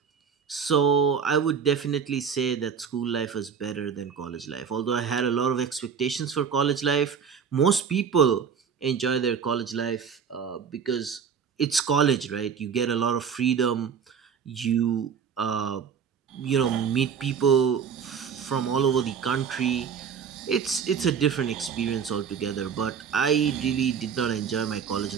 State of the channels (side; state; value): left; quieter; 6.9 dB